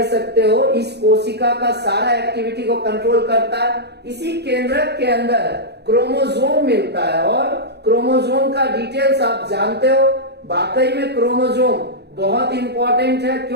सकते हो इस कोशिका का सारा एक्टिविटी को कंट्रोल करता है। इसी केंद्रक के अंदर क्रोमोसोम मिलता है और क्रोमोसोम का डिटेल्स आप जानते हो। वाकई में क्रोमोसोम बहुत इंपॉर्टेंट है।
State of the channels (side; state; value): left; late; 0.48 ms